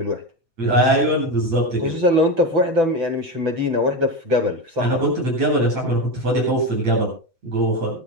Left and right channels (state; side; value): late; left; 7.9 ms